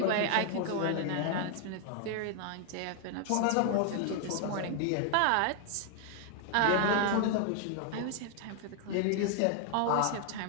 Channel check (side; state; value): both; different; correlation 0.00